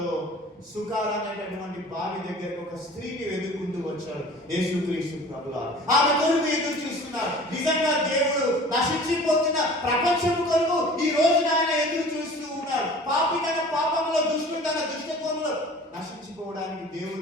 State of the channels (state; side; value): normal; both; correlation 0.44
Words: సుకార్ అనేటటువంటి బావి దగ్గరకు ఒక స్త్రీని వెతుకుంటూ వచ్చాడు యేసుక్రీస్తు ప్రభువు. ఆమె కొరకు ఎదురు చూస్తున్నారు. నిజంగా దేవుడు నశించిపోతున్న ప్రపంచం కొరకు ఈ రోజున ఆయన ఎదురు చూస్తూ ఉన్నారు. పాపి తన పాపంలో, దుష్టుడు తన దుష్టత్వంలో నశించిపోవడానికి